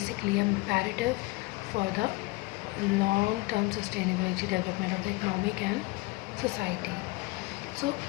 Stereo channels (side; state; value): right; quieter; 23.0 dB